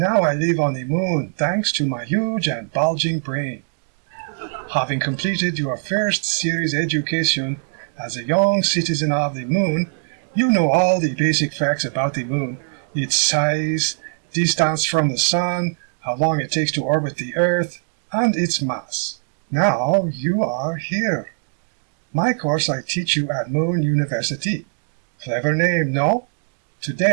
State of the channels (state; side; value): silent; left; digital silence